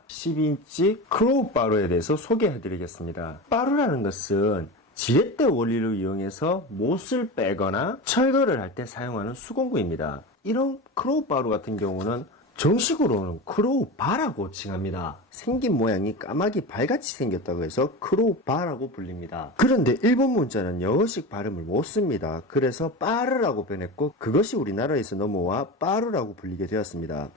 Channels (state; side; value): normal; both; correlation 0.26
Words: 10인치 크로우 바루에 대해서 소개해 드리겠습니다. 바루라는 것은 지렛대 원리를 이용해서 못을 빼거나 철거를 할 때 사용하는 수공구입니다. 이런 크로우 바루 같은 경우는 정식으로는 크로우 바라고 칭합니다. 생긴 모양이 까마귀 발같이 생겼다고 해서 크로우 바라고 불립니다. 그런데 일본 문자는 영어식 발음을 못 씁니다. 그래서 빠르라고 변했고 그것이 우리나라에서 넘어와 빠루라고 불리게 되었습니다.